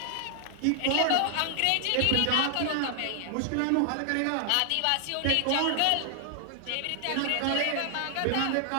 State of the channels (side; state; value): both; different; correlation 0.00